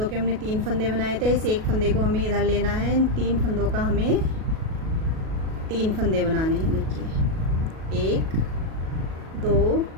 के हमने 3 फंदे बनाए थे, इस एक फंदे को हमें इधर लेना है। इन 3 फंदों का हमें 3 फंदे बनाने हैं। देखिए 1 2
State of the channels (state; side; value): late; left; 37 ms